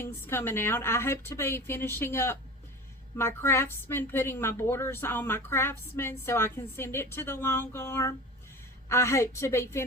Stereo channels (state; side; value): normal; both; correlation 0.34